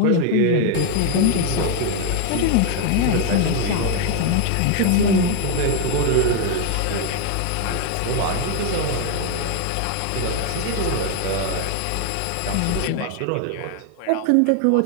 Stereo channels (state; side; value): different; both; correlation 0.01